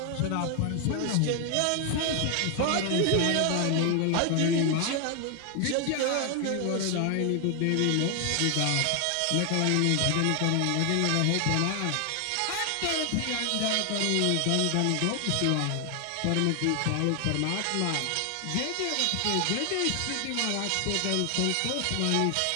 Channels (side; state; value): both; different; correlation 0.00